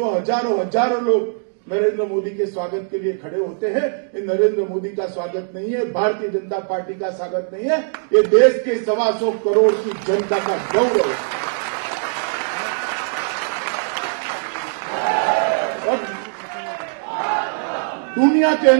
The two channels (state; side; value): silent; left; digital silence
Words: हजारों हजारों लोग नरेंद्र मोदी के स्वागत के लिए खड़े होते हैं, ये नरेंद्र मोदी का स्वागत नहीं है, भारतीय जनता पार्टी का स्वागत नहीं है, ये देश के 125 करोड़ की जनता का गौरव है। और दुनिया के